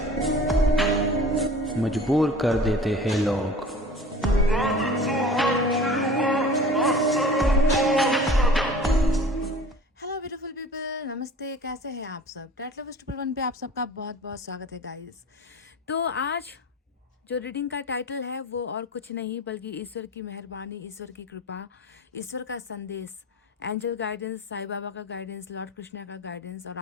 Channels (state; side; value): normal; both; correlation 0.42